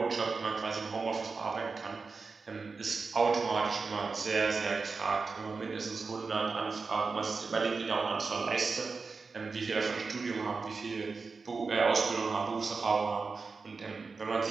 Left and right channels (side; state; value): left; quieter; 4.5 dB